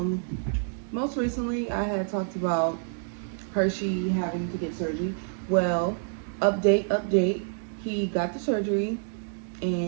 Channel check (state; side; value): silent; left; 59 dB below the other